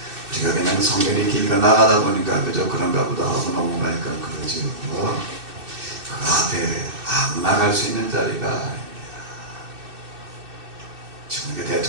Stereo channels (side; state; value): left; late; 2.6 ms